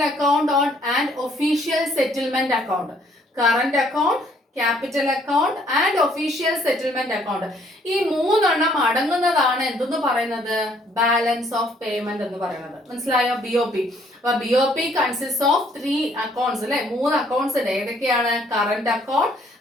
account and official settlement account. Current account, capital account and official settlement account. ഈ 3 അടങ്ങുന്നതാണ് എന്തെന്ന് പറയുന്നത്, ബാലൻസ് ഓഫ് പേയ്മെന്റ് എന്ന് പറയുന്നത്. മനസ്സിലായോ, BOP. അപ്പൊ BOP കൺസിസ്റ്റ് ഓഫ് 3 അക്കൗണ്ട്സ് അല്ലെ. 3 അക്കൗണ്ട്സ് ഉണ്ട്. ഏതൊക്കെയാണ്, current account,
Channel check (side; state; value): both; normal; correlation 0.64